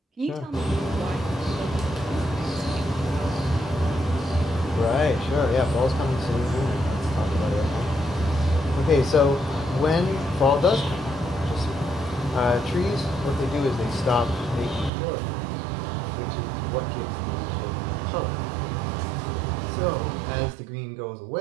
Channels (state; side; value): drops out; left; at 14.9 s